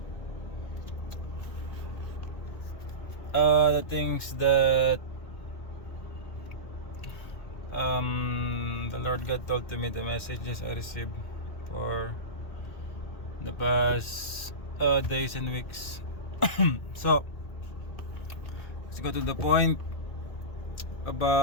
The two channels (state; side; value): late; right; 2.1 ms